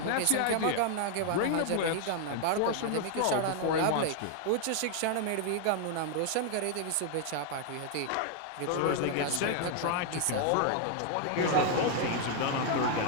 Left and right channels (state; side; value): different; both; correlation 0.00